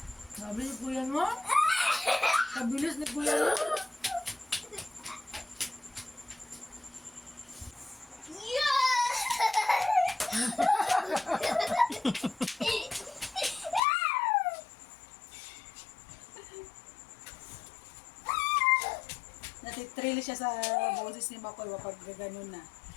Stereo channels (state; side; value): drops out; right; at 13.8 s